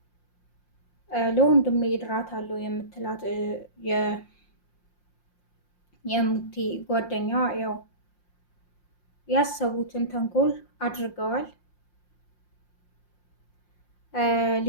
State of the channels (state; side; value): late; right; 5.7 ms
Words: ለወንድሜ እድራታለሁ የምትላት የእሙቲ ጓደኛ ያው ያሰቡትን ተንኮል አድርገዋል።